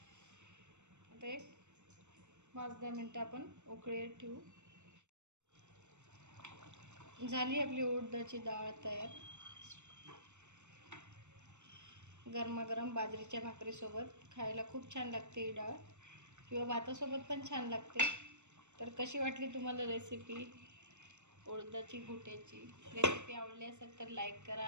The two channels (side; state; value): left; late; 0.84 ms